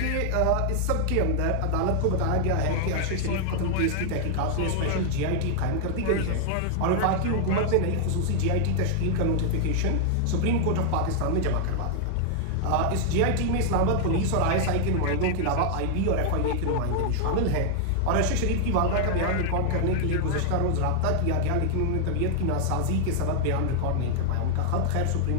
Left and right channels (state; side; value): different; both; correlation 0.00